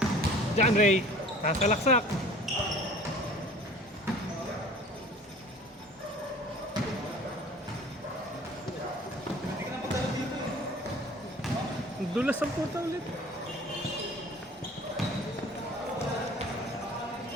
John Ray, kasalaksak. Dulas ang puta ulit.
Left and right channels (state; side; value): normal; both; correlation 0.46